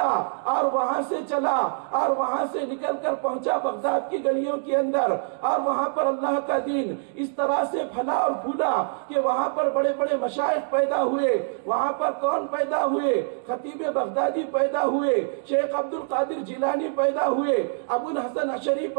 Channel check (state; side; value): silent; left; digital silence